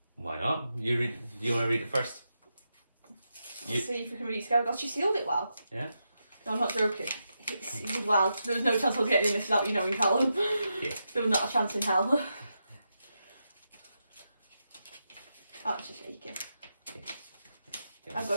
Why not? You read. Do you want to read it first? Let's see if we can read it together. God, she sealed it well. Yeah. No, I'm not joking. It's sealed well. There was no chance of getting this without you knowing, Callum. Yeah. There was not a chance in hell. Oh, it's just shaking. Okay. I've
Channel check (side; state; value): both; inverted; correlation -0.86